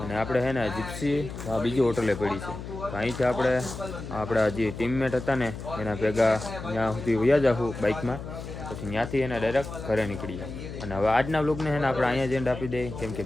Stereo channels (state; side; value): noise; left; hum, 9 dB below the sound